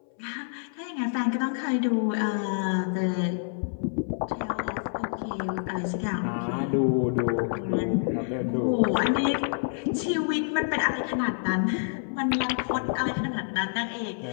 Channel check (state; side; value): silent; right; 60 dB below the other